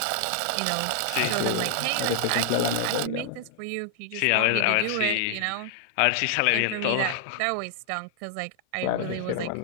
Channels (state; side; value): different; both; correlation 0.00